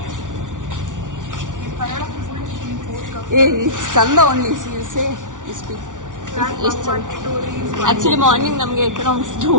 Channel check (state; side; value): late; left; 0.87 ms